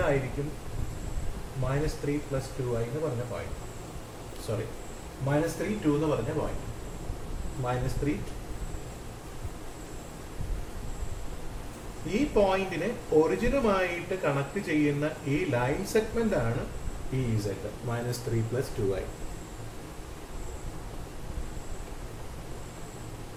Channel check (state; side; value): identical; both; correlation 1.00